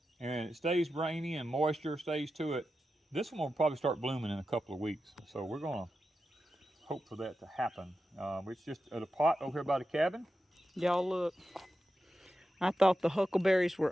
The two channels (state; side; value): normal; both; correlation 0.90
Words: and it stays rainy and moisture stays to it, this one will probably start blooming in a couple of weeks. So we're going to hope for that to happen. It's just at a pot over here by the cabin. Y'all look. I thought the huckleberries